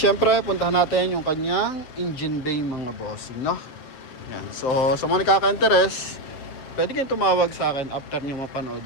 puntahan natin yung kanyang engine bay mga bossing, no? Yan. So sa mga nakaka-interest, pwede kayong tumawag sa akin after niyo mapanood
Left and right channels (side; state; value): right; late; 7.8 ms